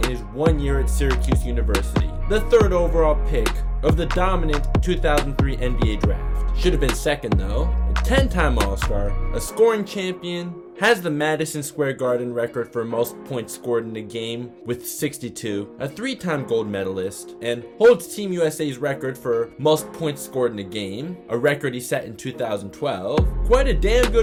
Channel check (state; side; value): identical; both; correlation 1.00